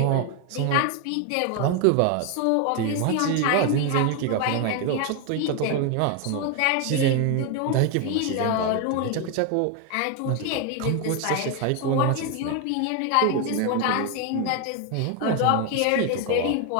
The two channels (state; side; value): different; both; correlation 0.01